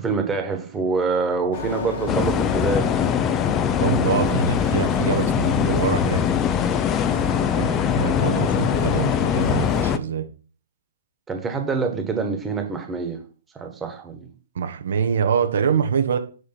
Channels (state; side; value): normal; both; correlation 0.11